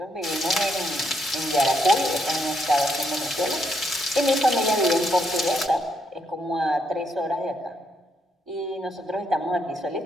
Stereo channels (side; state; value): both; normal; correlation 0.76